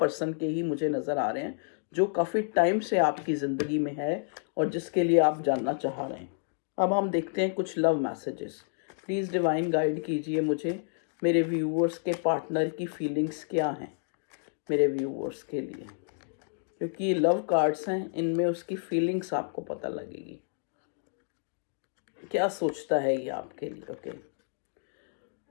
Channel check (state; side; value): silent; right; digital silence